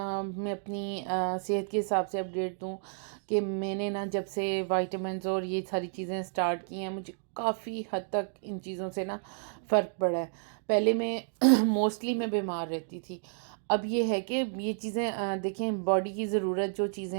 अपनी सेहत के हिसाब से अपडेट दूँ कि मैंने ना जब से विटामिन्स और ये सारी चीज़ें स्टार्ट की हैं, मुझे काफ़ी हद तक इन चीज़ों से ना फ़र्क पड़ा है। पहले मैं मोस्टली मैं बीमार रहती थी। अब ये है कि ये चीज़ें देखें, बॉडी की ज़रूरत जो चीज़ें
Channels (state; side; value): silent; left; digital silence